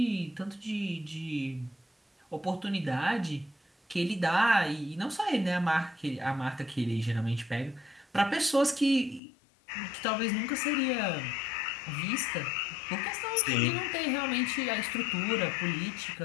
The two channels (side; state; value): right; drops out; at 9.2 s